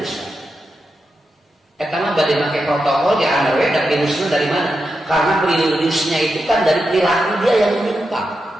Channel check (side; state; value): both; normal; correlation 0.88